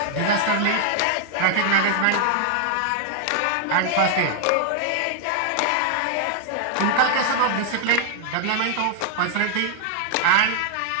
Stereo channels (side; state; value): both; different; correlation 0.00